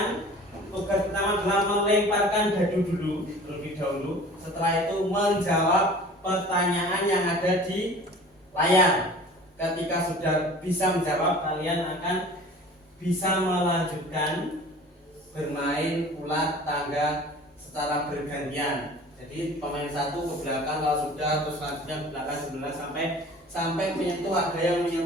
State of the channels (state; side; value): normal; both; correlation 0.44